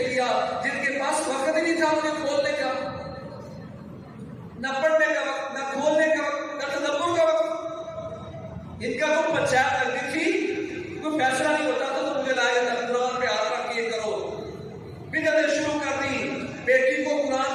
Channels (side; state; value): both; identical; correlation 1.00